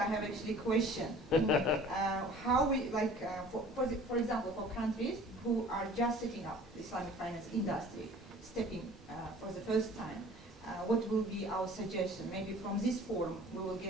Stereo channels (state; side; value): normal; both; correlation 0.48